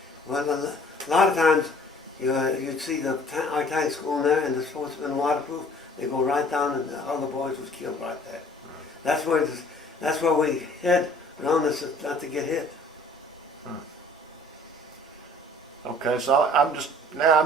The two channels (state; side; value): normal; both; correlation 0.53